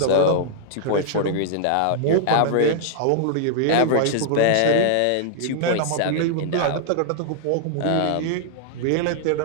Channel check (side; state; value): both; different; correlation -0.01